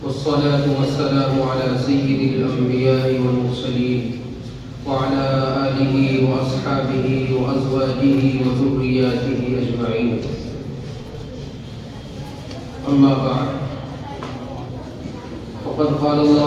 والصلاة والسلام على سيد الأنبياء والمرسلين وعلى آله وأصحابه وأزواجه وذرياته أجمعين. أما بعد، وقد قال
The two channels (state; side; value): identical; both; correlation 1.00